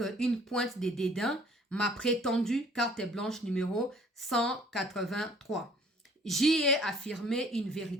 une pointe de dédain, ma prétendue carte blanche numéro 183. J'y ai affirmé une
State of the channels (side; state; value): both; normal; correlation 0.55